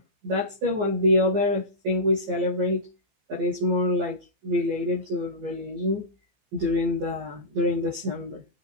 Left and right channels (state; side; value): late; left; 15 ms